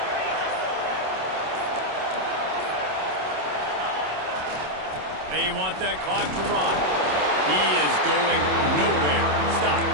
They want that clock to run. He is going nowhere. Stop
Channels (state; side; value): late; left; 27 ms